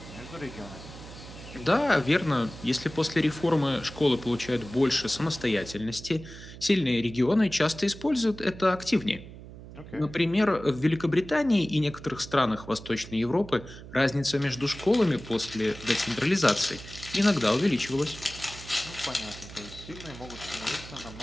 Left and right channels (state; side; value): noise; right; hum, 15 dB below the sound